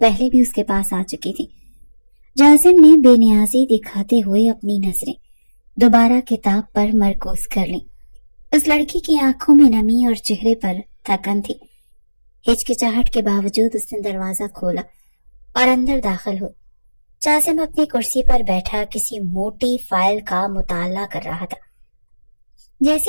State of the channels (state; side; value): inverted; both; correlation -1.00